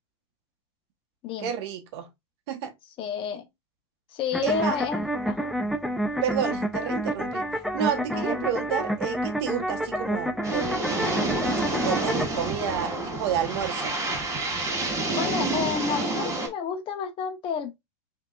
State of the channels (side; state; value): both; normal; correlation 0.36